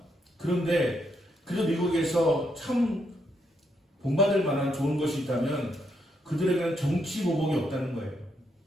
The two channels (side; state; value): both; normal; correlation 0.77